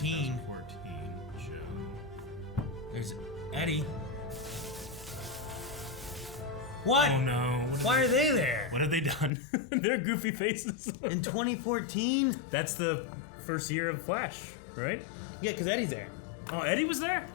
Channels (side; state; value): right; drops out; at 9.3 s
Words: 2014 show. There's Eddie. What? Oh no. Why are they there? What have they done? They're goofy faces. In 2014? That's the first year of Flash, right? Yeah, because Eddie's there. Oh, Eddie was there?